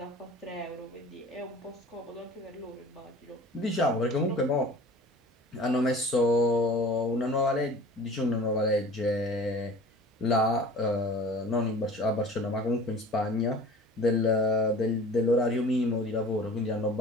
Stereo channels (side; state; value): both; normal; correlation 0.43